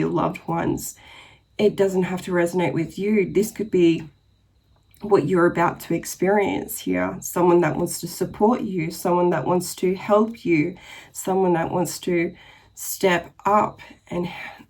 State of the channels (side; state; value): both; identical; correlation 1.00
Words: loved ones. It doesn't have to resonate with you. This could be what you're about to experience here. Someone that wants to support you, someone that wants to help you, someone that wants to step up